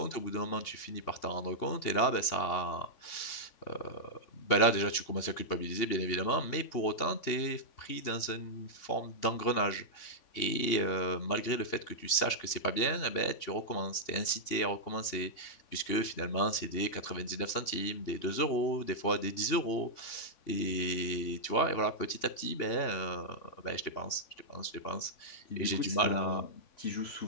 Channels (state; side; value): late; right; 3.5 ms